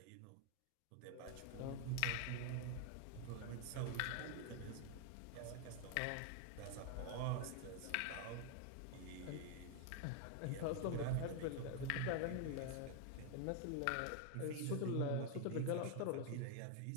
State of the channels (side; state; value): both; different; correlation 0.00